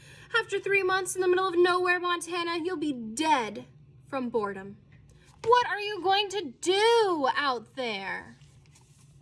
After 3 months in the middle of nowhere, Montana, you'll be dead from boredom. What are you going to do out there?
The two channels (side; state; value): both; identical; correlation 1.00